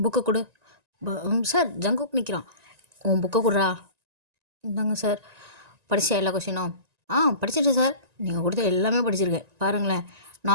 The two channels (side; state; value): left; late; 1.9 ms